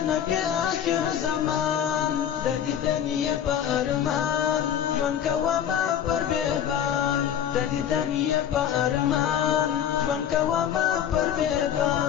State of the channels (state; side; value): quieter; right; 9.4 dB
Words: نبی آخر زمان د دیدنی په ارمان ژوند کوما پر بیابان د دیدنی په ارمان ژوند کوما پر